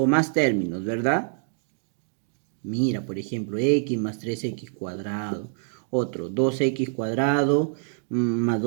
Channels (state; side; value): silent; left; digital silence